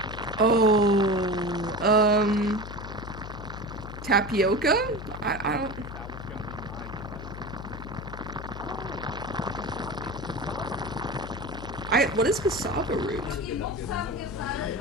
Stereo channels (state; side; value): noise; left; hum, 10 dB below the sound